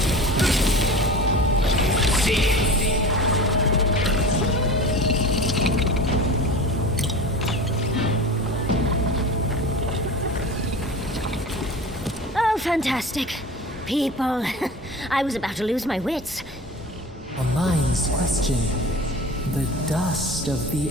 Oh, fantastic. People. I was about to lose my wits. A mind's question. The dust of the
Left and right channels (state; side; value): normal; both; correlation 0.34